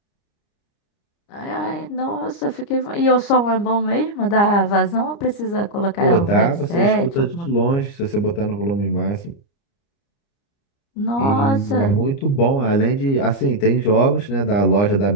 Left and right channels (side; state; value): right; late; 29 ms